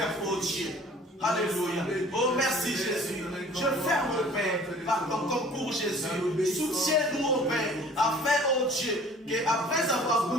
oh Dieu. Alléluia. Oh merci Jésus. Je ferme, oh Père, par ton concours Jésus. Soutiens-nous, oh Père, afin, oh Dieu, qu'après avoir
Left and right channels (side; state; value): both; normal; correlation 0.50